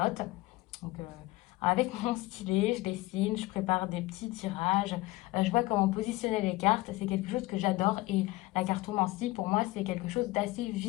Donc, avec mon stylet, je dessine, je prépare des petits tirages, je vois comment positionner les cartes, c'est quelque chose que j'adore et la cartomancie pour moi c'est quelque chose d'assez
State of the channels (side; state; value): right; quieter; 19.8 dB